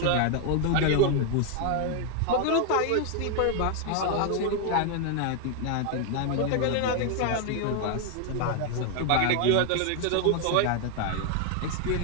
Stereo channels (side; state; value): both; different; correlation 0.01